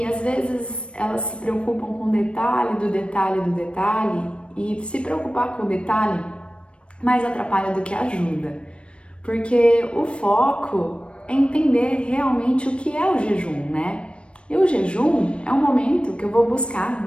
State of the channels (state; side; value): late; right; 0.059 ms